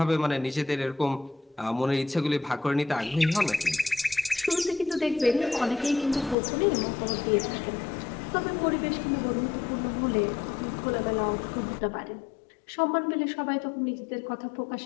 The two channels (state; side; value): drops out; right; at 6.4 s